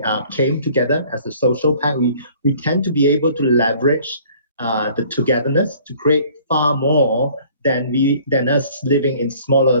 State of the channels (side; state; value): both; inverted; correlation -0.54